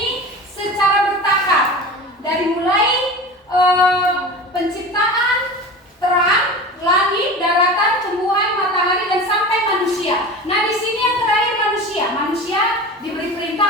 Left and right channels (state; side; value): normal; both; correlation 0.33